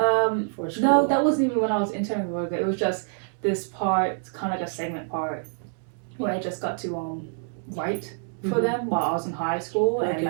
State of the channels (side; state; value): left; silent; digital silence